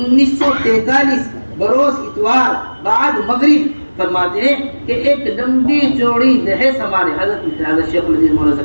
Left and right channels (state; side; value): inverted; both; correlation -1.00